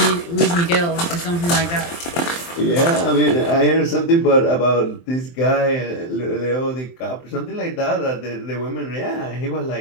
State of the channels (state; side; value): late; right; 23 ms